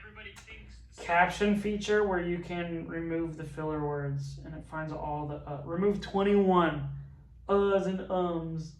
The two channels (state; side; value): identical; both; correlation 1.00